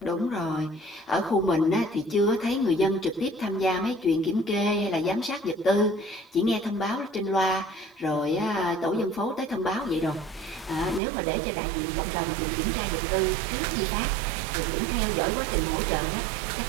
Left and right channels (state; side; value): drops out; left; at 11.0 s